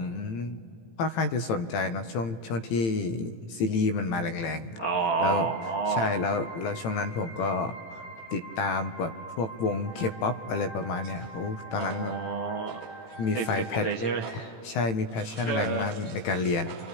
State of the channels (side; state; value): right; late; 18 ms